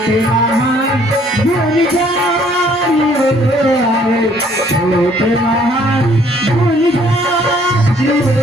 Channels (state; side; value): normal; both; correlation 0.61